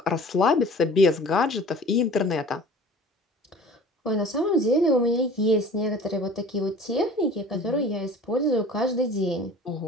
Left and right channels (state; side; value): normal; both; correlation 0.44